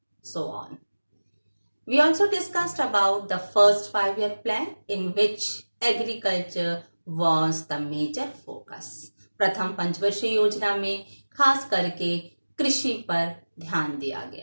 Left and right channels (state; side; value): inverted; both; correlation -1.00